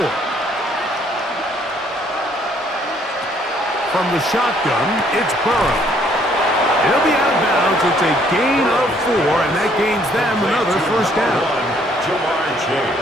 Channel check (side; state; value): both; normal; correlation 0.64